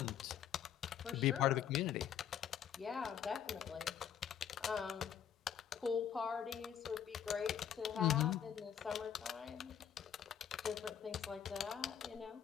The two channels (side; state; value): right; quieter; 8.9 dB